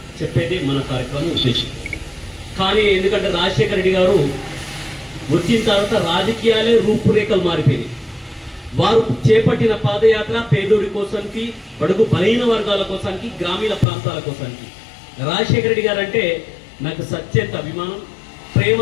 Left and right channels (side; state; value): right; drops out; at 13.9 s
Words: చెప్పేది మన కార్యక్రమం ఉద్దేశం. కానీ ఎందుకంటే రాజశేఖర రెడ్డి గారు వచ్చిన తర్వాత రాజకీయాలే రూపురేఖలు మారిపోయినాయి. వారు చేపట్టిన పాదయాత్ర పేదోడి కోసానికి, బడుగు బలహీన వర్గాల కోసానికి, గ్రామీణ ప్రాంతాల కోసానికి. రాజశేఖర రెడ్డి గారు అంటే నాకు సత్యంత అభిమానం,